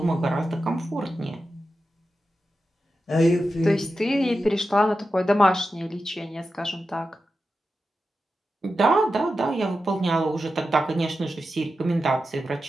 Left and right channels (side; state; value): both; normal; correlation 0.91